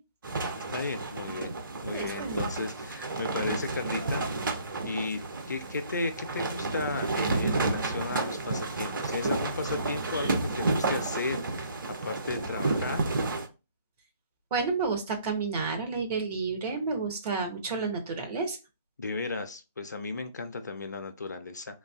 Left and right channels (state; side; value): inverted; both; correlation -0.57